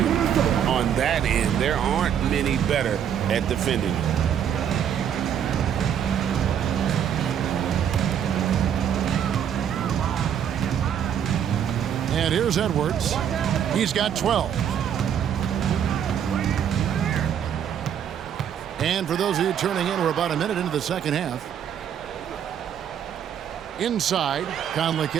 on that end, there aren't many better at defending it. And here's Edwards. He's got 12. And for those of you turning in, we're about a minute into the second half. Inside, Conley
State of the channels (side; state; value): left; quieter; 8.9 dB